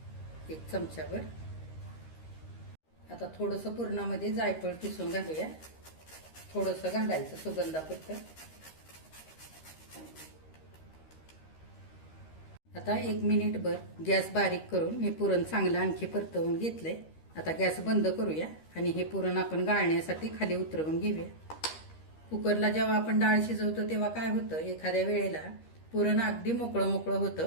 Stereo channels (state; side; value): late; right; 13 ms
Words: 1 चमचाभर. आता थोडंसं पुरणामध्ये जायफळ किसून घालूया. थोडंसं घालायचं सुगंधापुरतं. आता 1 मिनिटभर गॅस बारीक करून मी पुरण चांगलं आणखी परतवून घेतलंय. आता गॅस बंद करूया आणि हे पुरण आपण गाळण्यासाठी खाली उतरवून घेऊया. कुकरला जेव्हा आपण डाळ शिजवतो तेव्हा काय होतं एखाद्या वेळेला पुरण अगदी मोकळं मोकळं